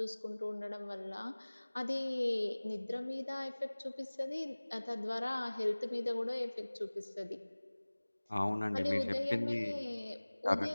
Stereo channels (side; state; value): both; inverted; correlation -1.00